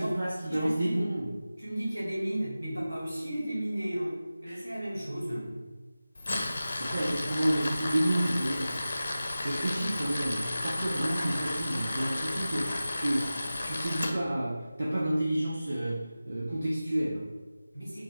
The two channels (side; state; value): both; inverted; correlation -0.95